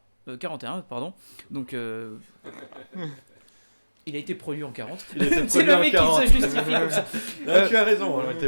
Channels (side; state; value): both; inverted; correlation -1.00